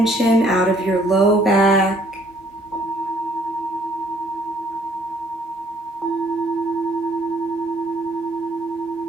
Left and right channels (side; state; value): both; normal; correlation 0.62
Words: out of your low back.